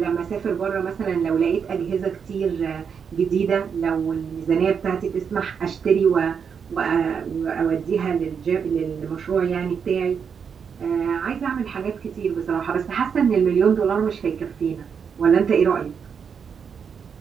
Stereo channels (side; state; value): left; quieter; 6.7 dB